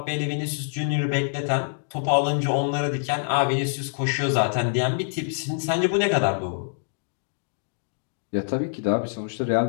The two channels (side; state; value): right; silent; digital silence